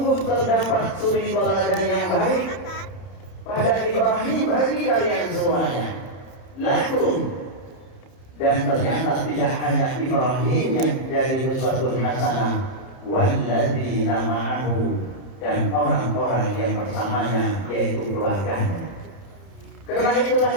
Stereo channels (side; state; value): right; late; 30 ms